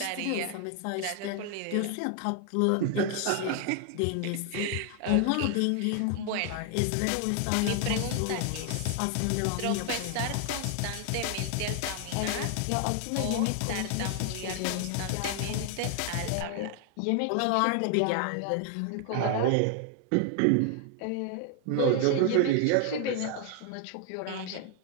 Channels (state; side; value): different; both; correlation 0.00